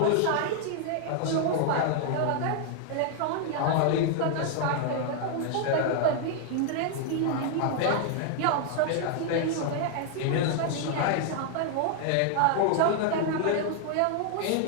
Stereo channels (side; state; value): both; different; correlation 0.00